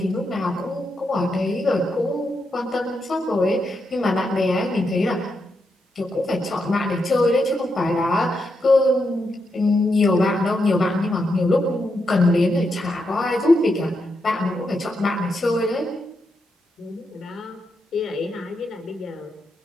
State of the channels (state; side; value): normal; both; correlation 0.83